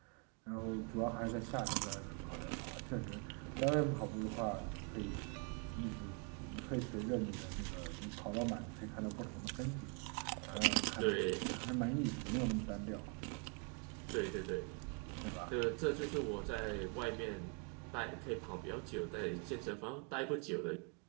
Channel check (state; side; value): quieter; left; 35.1 dB